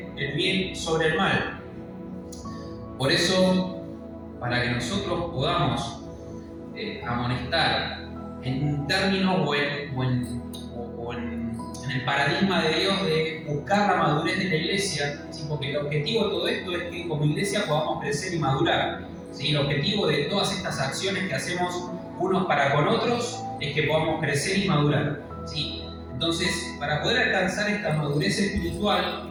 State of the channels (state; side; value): identical; both; correlation 1.00